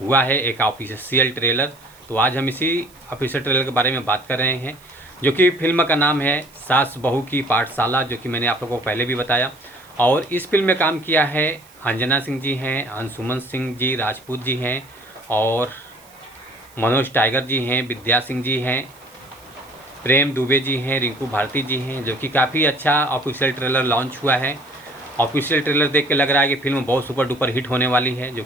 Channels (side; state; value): right; noise; hiss, 26 dB below the sound